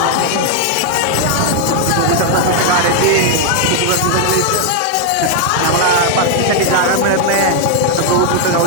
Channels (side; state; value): both; different; correlation 0.00